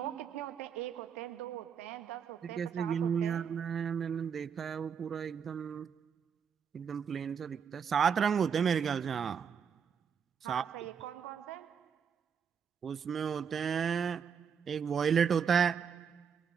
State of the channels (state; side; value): quieter; left; 7.1 dB